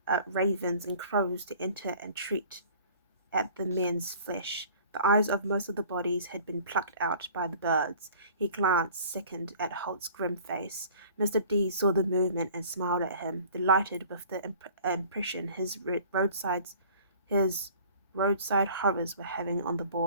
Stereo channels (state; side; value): inverted; both; correlation -0.49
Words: ravens and crows to enter and treat at the men's flesh. The eyes of most of the bodies had been plucked out by the birds. He glanced, sickened, at Holt's grim face. Mr. D saw the movement and smiled at him, delighted with the impression his roadside horrors were having on the